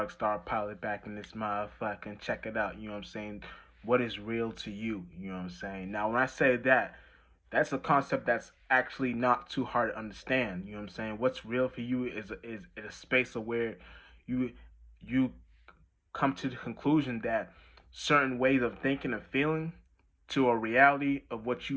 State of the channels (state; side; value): identical; both; correlation 1.00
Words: Star Pilot back in this motherfucking check it out. You know what I'm saying? What is real to you? You know what I'm saying? Now, when I say that, that's a concept that's actually not too hard to understand. You know what I'm saying? What's real for you is a space of where you you come to the conclusion that certain ways of thinking and feeling to a reality of what